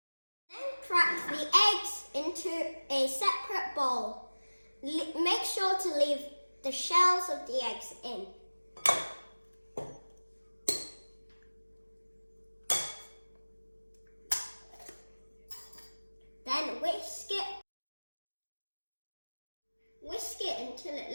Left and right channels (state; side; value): inverted; both; correlation -1.00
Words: Then crack the eggs into a separate bowl. Make sure to leave the shells of the eggs in. Then whisk it until it